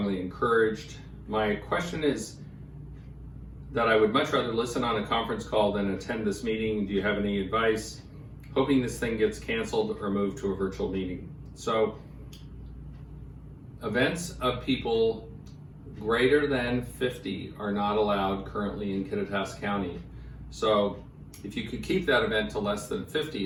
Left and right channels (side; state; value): both; identical; correlation 1.00